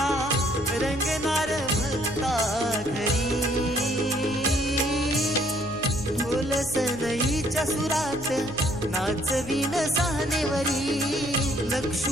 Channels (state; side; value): noise; right; hum, 18 dB below the sound